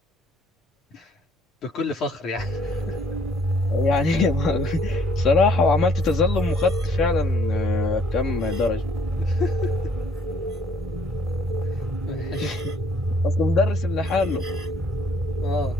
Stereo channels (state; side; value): normal; both; correlation 0.63